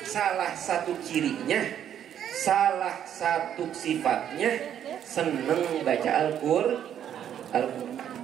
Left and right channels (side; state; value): left; quieter; 9.8 dB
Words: salah satu cirinya, salah satu sifatnya seneng baca Al-Quran.